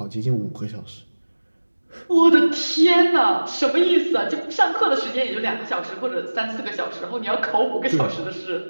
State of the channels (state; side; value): inverted; both; correlation -1.00